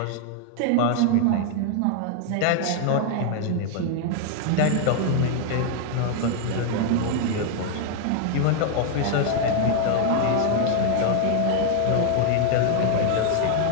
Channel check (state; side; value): different; both; correlation 0.00